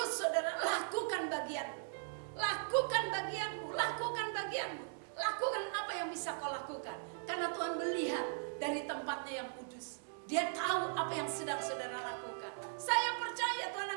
saudara lakukan bagianmu. Lakukan bagianmu, lakukan bagianmu. Lakukan apa yang bisa kau lakukan. Karena Tuhan melihat dari tempatnya yang kudus. Dia tahu apa yang sedang saudara lakukan. Saya percaya Tuhan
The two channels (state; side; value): silent; left; digital silence